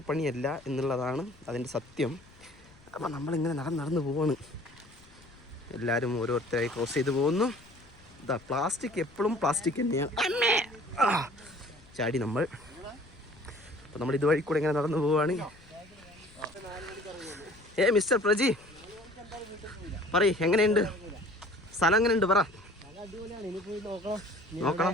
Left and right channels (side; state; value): left; noise; rumble, 25 dB below the sound